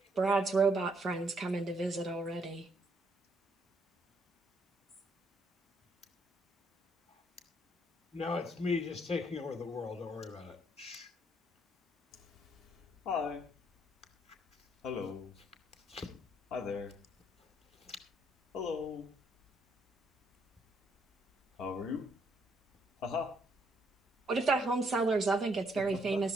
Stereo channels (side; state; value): both; normal; correlation 0.71